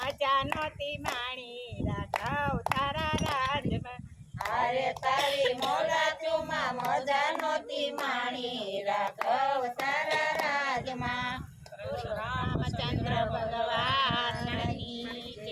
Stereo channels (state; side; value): identical; both; correlation 1.00